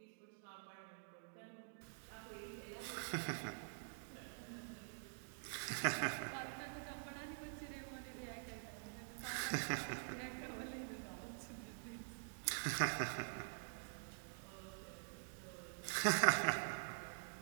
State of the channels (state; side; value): silent; left; digital silence